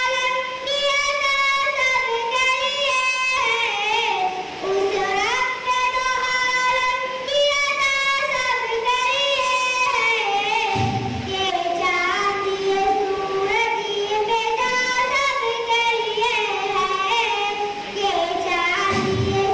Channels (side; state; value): both; identical; correlation 1.00